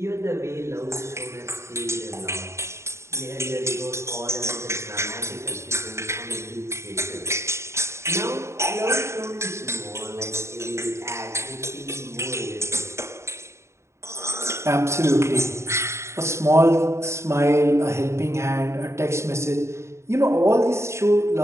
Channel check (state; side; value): late; left; 0.13 ms